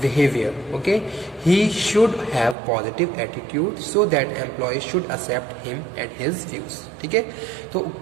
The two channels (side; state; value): left; drops out; at 2.6 s